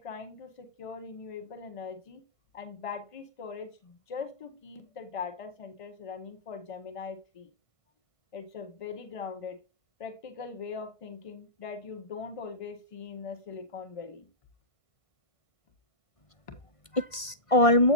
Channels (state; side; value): late; right; 1.5 ms